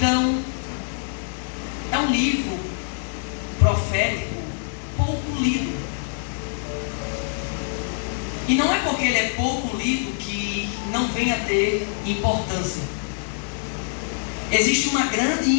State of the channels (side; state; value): right; silent; digital silence